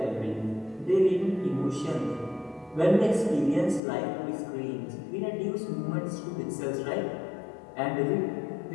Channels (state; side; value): drops out; right; at 3.8 s